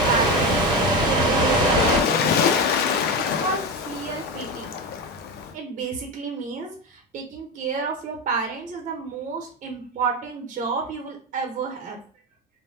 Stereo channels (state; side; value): normal; both; correlation 0.18